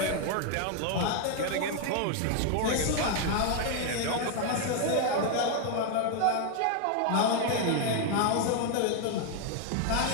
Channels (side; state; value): both; different; correlation 0.00